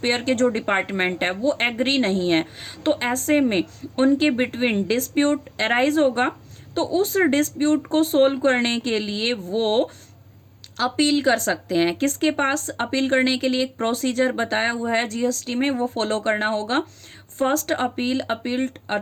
के जो डिपार्टमेंट है वो एग्री नहीं है, तो ऐसे में उनके बिटवीन डिस्प्यूट अराइज होगा। तो उस डिस्प्यूट को सोल्व करने के लिए वो अपील कर सकते हैं। किसके पास अपील करने के लिए एक प्रोसीजर बताया हुआ है जीएसटी में, वो फॉलो करना होगा। फर्स्ट अपील अपील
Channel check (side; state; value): both; identical; correlation 1.00